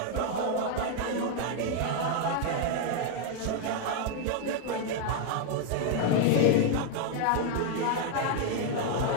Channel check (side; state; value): both; different; correlation 0.00